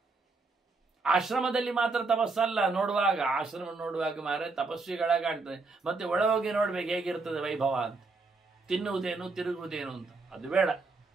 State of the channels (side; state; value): left; quieter; 3.8 dB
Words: ಆಶ್ರಮದಲ್ಲಿ ಮಾತ್ರ ತಪಸ್ಸಲ್ಲ. ನೋಡುವಾಗ ಆಶ್ರಮ ನೋಡುವಾಗ ಮಾರೆ ತಪಸ್ವಿಗಳ ಕಾಣ್ತದೆ. ಮತ್ತೆ ಒಳಗೋಗಿ ನೋಡ್ಬೇಕು ಹೇಗಿರ್ತದೆ ವೈಭವ ಅಂತ. ತಿನ್ನುವುದೇನು ತಿರುಗುವುದೇನು ಅಂತ ಅದು ಬೇಡ.